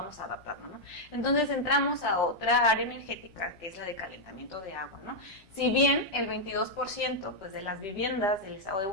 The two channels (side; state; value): both; normal; correlation -0.03